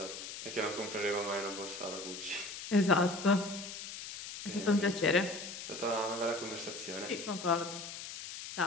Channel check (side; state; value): left; noise; hiss, 9 dB below the sound